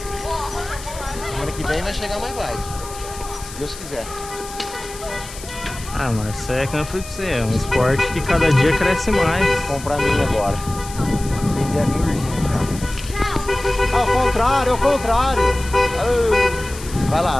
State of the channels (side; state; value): left; noise; hiss, 14 dB below the sound